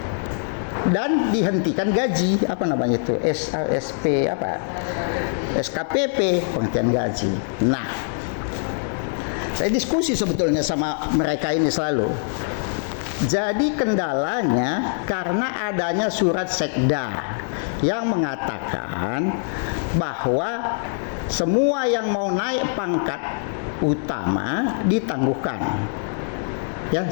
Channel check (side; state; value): right; silent; 58 dB below the other